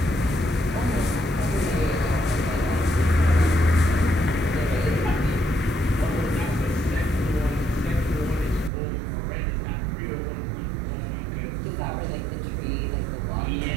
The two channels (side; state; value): left; drops out; at 8.7 s